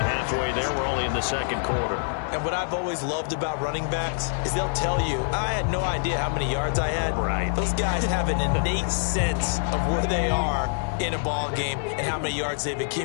halfway there. We're only in the second quarter. And what I've always loved about running backs is they'll tell you, I had no idea how many yards I had. Right. Those guys have an innate sense of where they are in a ball game and how many yards they've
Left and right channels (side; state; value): right; silent; 61 dB below the other